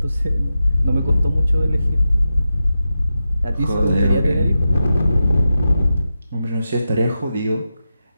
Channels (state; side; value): inverted; both; correlation -0.90